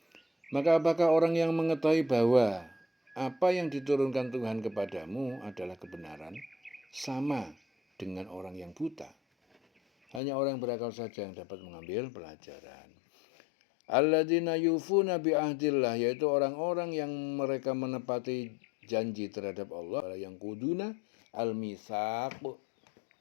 Maka apakah orang yang mengetahui bahwa apa yang diturunkan Tuhan kepadamu adalah kebenaran sama dengan orang yang buta? Hanya orang yang berakal saja yang dapat mengambil pelajaran. Alladzina yufuna bi ahdillah, yaitu orang-orang yang mereka menepati janji terhadap Allah, yang kuduna al-mitsaq,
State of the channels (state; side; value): drops out; right; at 10.2 s